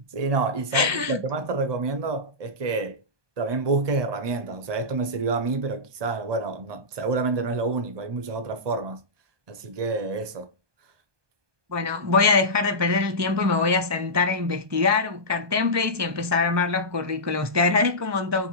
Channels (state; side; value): late; left; 1.2 ms